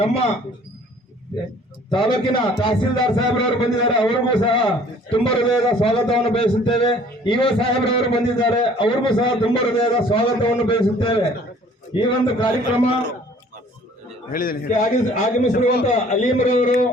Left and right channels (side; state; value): both; normal; correlation 0.54